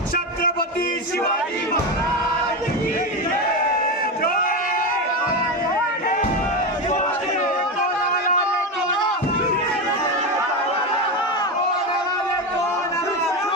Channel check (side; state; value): both; normal; correlation 0.16